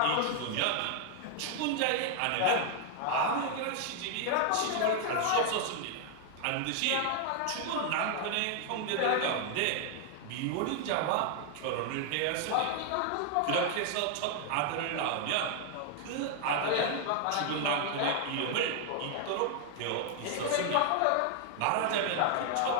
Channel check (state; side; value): different; both; correlation 0.00